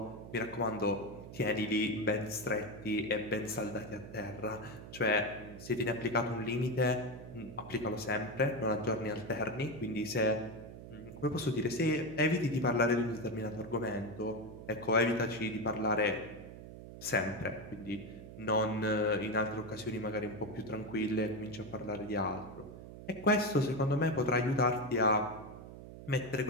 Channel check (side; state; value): right; noise; hum, 13 dB below the sound